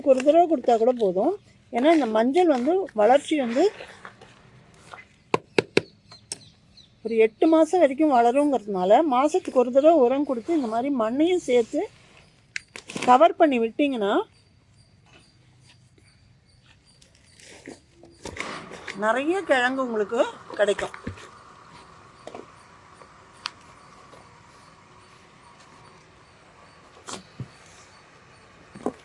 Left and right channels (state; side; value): identical; both; correlation 1.00